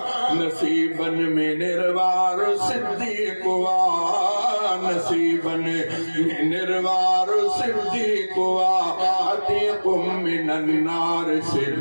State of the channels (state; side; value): inverted; both; correlation -1.00